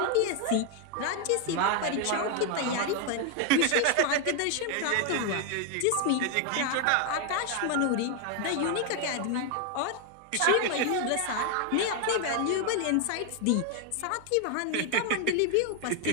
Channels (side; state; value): both; different; correlation 0.01